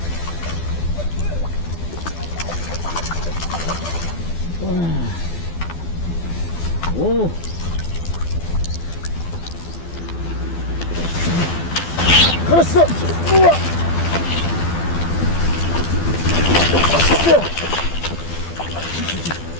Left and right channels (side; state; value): right; late; 12 ms